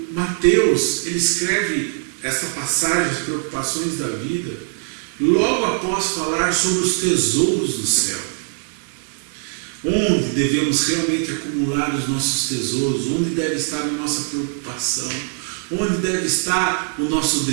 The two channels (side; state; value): left; silent; 61 dB below the other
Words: Mateus, ele escreve essa passagem, as preocupações da vida, logo após falar sobre os tesouros do céu. onde devemos realmente acumular os nossos tesouros, onde deve estar a nossa preocupação, onde deve estar o nosso